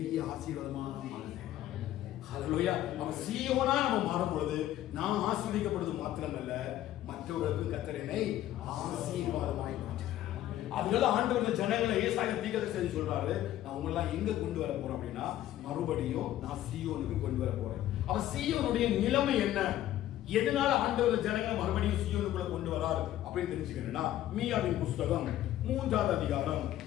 ஆசீர்வாதமாக மாறுது. ஹல்லேலூயா. நம்ம சீயோனா நம்ம மாறும் பொழுது நான் ஆசீர்வதிக்கப்படுவது மாத்திரமல்ல, மற்றவர்களுக்கு கர்த்தர் என்னை ஆசீர்வாதமாய் மாற்றுகிறார். அதனால ஆண்டவர் ஜனங்களை ஏசாயா தீர்க்கதரிசி சொல்றாரு, நான் உங்களை எங்க கொண்டு வர போறேன் அப்படின்னா மறுபடியும் நான் சீயோனுக்கு கொண்டு வர போறேன். அவ சீயோனுடைய நிலைமை என்ன? எதனால ஆண்டவர் ஜனங்களை மறுபடியும் சீயோனுக்குள்ள கொண்டு வரார் அப்படின்னு தெரிஞ்சுக்கணும்னா மீகாவின் புஸ்தகம் 3வது அதிகாரம்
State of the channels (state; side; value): quieter; right; 13.3 dB